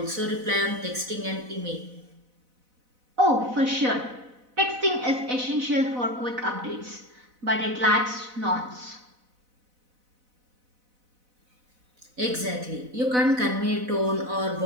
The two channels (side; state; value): left; late; 4.0 ms